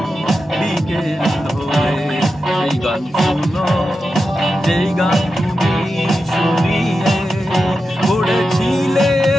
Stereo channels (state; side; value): normal; both; correlation 0.90